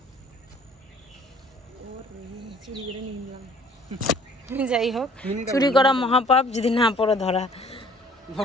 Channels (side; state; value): both; normal; correlation 0.54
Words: যাই হোক, চুরি করা মহাপাপ, যদি না পড়ো ধরা